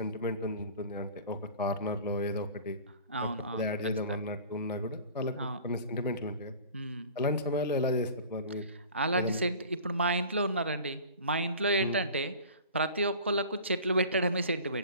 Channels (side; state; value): both; inverted; correlation -0.42